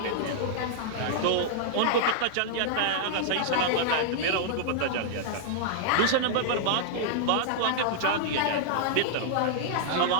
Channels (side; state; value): both; different; correlation -0.01